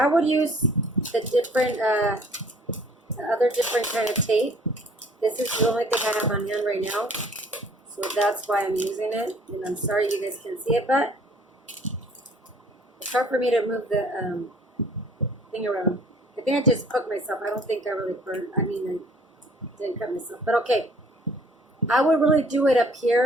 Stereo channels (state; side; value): normal; both; correlation 0.55